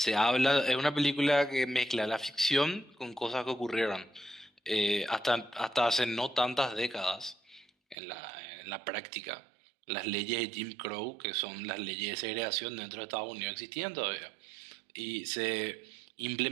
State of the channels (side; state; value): left; drops out; at 8.0 s